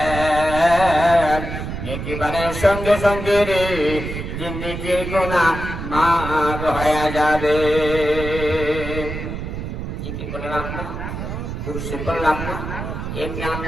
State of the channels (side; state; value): right; noise; rumble, 6 dB below the sound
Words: নেকিবারের সঙ্গে সঙ্গে রে জিন্দেগির গুনাহ মাফ হয়ে যাবে জিকির করে রাখনা দুরূদ শরীফ পড়ে রাখনা এমনি